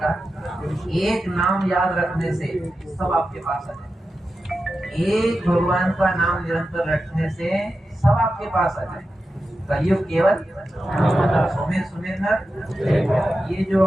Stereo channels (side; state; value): both; normal; correlation 0.91